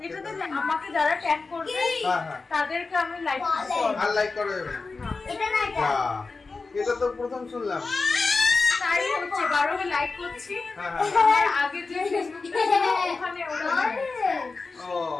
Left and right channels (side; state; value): right; quieter; 4.0 dB